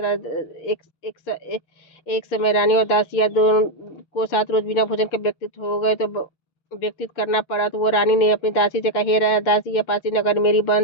एक समय रानी और दासियां दोनों को 7 रोज बिना भोजन के व्यतीत करना पड़ा। तो वो रानी ने अपनी दासी से कहा, हे दासी, यह पासी नगर मेरी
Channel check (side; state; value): right; late; 6.7 ms